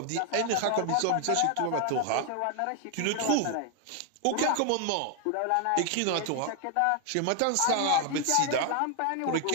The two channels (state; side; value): different; both; correlation 0.00